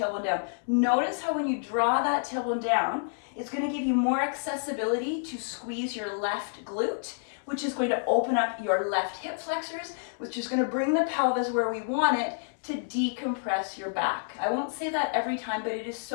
down. Notice how when you draw that tailbone down, it's going to give you more accessibility to squeeze your left glute, which is going to open up your left hip flexors, which is going to bring the pelvis where we want it to decompress your back. I won't say that every time, but it is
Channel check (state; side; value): silent; right; digital silence